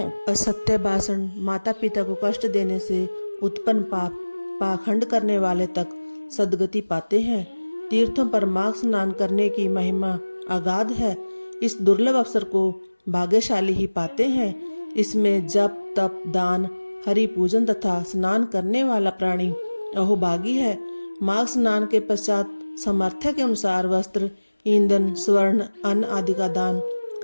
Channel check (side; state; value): both; inverted; correlation -1.00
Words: असत्य भाषण, माता पिता को कष्ट देने से उत्पन्न पाप, पाखंड करने वाले तक सद्गति पाते हैं। तीर्थों पर माघ स्नान करने की महिमा अगाध है। इस दुर्लभ अवसर को भाग्यशाली ही पाते हैं। इसमें जप, तप, दान, हरि पूजन तथा स्नान करने वाला प्राणी अहोभागी है। माघ स्नान के पश्चात सामर्थ्य के अनुसार वस्त्र, ईंधन, स्वर्ण, अन्न आदि का दान